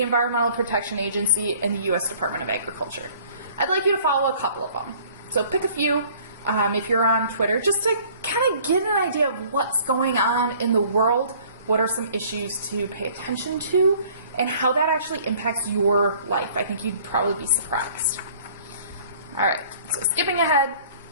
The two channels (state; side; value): inverted; both; correlation -0.53